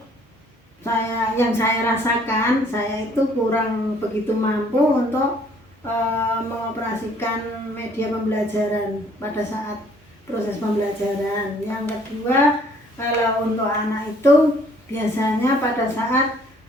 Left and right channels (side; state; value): both; normal; correlation 0.60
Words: yang saya rasakan saya itu kurang begitu mampu untuk mengoperasikan media pembelajaran pada saat proses pembelajaran. Yang kedua, kalau untuk anak itu biasanya pada saat